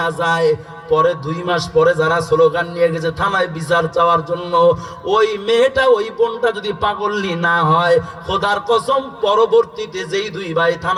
যায়, পরে 2 মাস পরে যারা স্লোগান নিয়ে গেছে থানায় বিচার চাওয়ার জন্য, ওই মেয়েটা ওই বোনটা যদি পাগলনি না হয়, খোদার কসম পরবর্তীতে যেই 2 ভাই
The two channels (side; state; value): both; identical; correlation 1.00